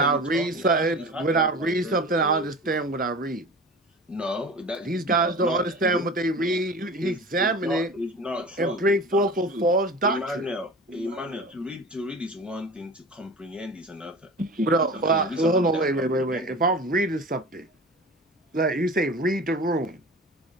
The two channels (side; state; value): both; normal; correlation 0.35